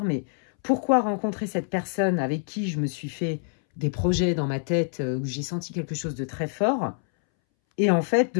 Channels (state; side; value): silent; right; 61 dB below the other